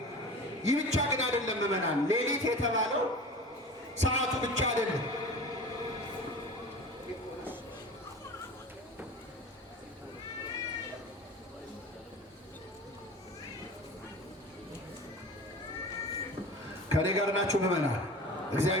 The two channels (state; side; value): normal; both; correlation 0.36